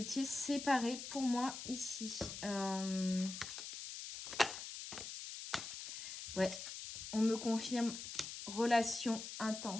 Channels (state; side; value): noise; left; hiss, 8 dB below the sound